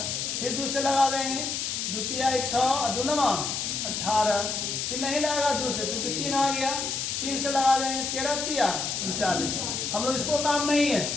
फिर 2 से लगावेंगे, 2 3 6 2 9 18। फिर नहीं लगेगा 2 से, चूंकि 3 आ गया। 3 से लगा देंगे, 13 3 39। हम लोग इसको काम नहीं है,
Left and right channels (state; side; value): noise; left; hiss, 2 dB below the sound